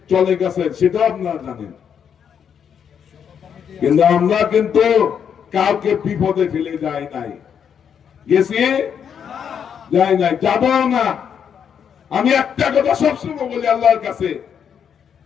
চলে গেছেন সেটাও আপনারা জানেন। কিন্তু আমরা কিন্তু কাউকে বিপদে ফেলে যাই নাই, গেছি যাই নাই, যাবো না। আমি একটা কথা সবসময় বলি আল্লাহর কাছে,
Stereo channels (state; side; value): quieter; right; 7.8 dB